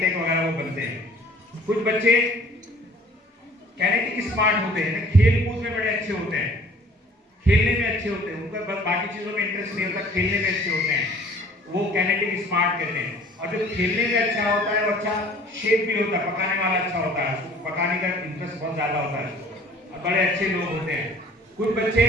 वगैरह वो बनते हैं। कुछ बच्चे कैनेटिक स्मार्ट होते हैं, खेल कूद में बड़े अच्छे होते हैं, खेलने में अच्छे होते हैं, उनका बाकी चीजों में इंटरेस्ट नहीं होता, खेलने में अच्छे होते हैं, वो कैनेटिक स्मार्ट कहते हैं। और जो खेलने में अच्छा होता है वो अच्छा शेफ भी होता है, पकाने वाला अच्छा होता है, उसको पकाने का इंटरेस्ट बहुत ज्यादा होता है और बड़े अच्छे लोग होते हैं। कुछ बच्चे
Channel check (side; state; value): both; normal; correlation 0.52